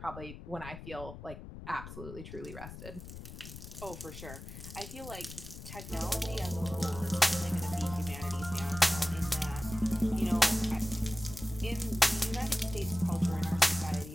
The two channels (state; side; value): noise; left; rumble, 12 dB below the sound